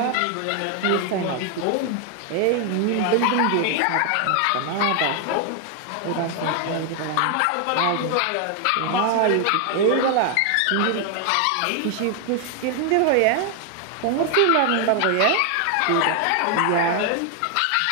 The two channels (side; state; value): both; different; correlation 0.00